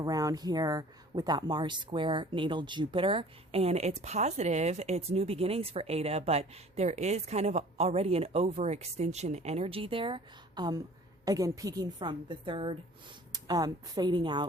here with that Mars square natal Jupiter, and it's positive, it's new beginnings for ADA, but there is kind of already an overextension energy there, again peaking from the 3rd, fading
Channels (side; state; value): both; normal; correlation 0.48